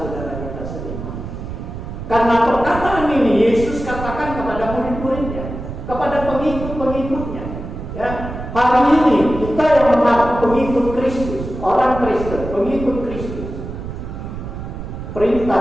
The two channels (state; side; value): noise; right; rumble, 8 dB below the sound